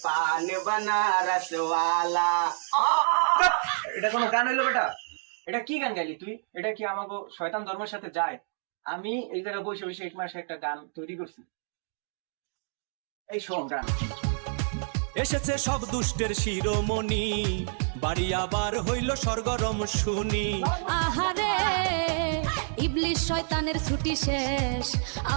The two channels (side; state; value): left; silent; digital silence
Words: পান বানারস ওয়ালা। এটা কোনো গান হইলো বেটা? এটা কি গান গাইলি তুই? এটা কি আমাকে শয়তান ধর্মের সাথে যায়? আমি এই জায়গায় বসে বসে এক মাসে একটা গান তৈরি করছি। এই শোন গান। এসেছে সব দুষ্টের শিরোমণি, বাড়ি আবার হইল সরগরম শুনি। আহারে ইবলিশ শয়তানের ছুটি শেষ,